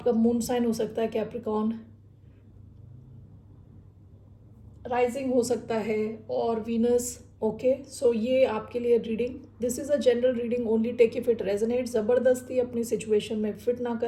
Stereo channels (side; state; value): both; identical; correlation 1.00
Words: मून साइन हो सकता है कैप्रिकॉन, राइजिंग हो सकता है और वीनस। ओके, सो ये आपके लिए reading, this is a general reading, only take if it resonate. ज़बरदस्ती अपनी सिचुएशन में फिट ना